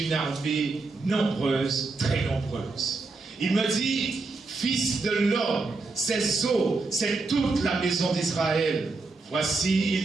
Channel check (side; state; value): left; quieter; 3.7 dB